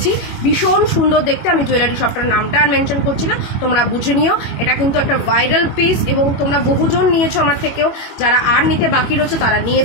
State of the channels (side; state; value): right; late; 21 ms